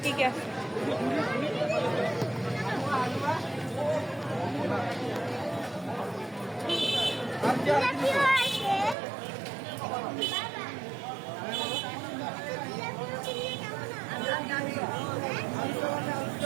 কি কি আছে।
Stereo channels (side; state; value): left; drops out; at 9.0 s